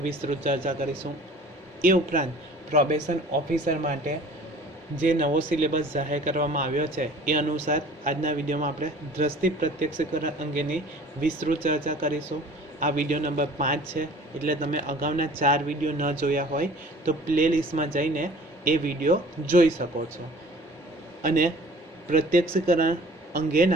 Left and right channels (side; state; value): both; normal; correlation 0.47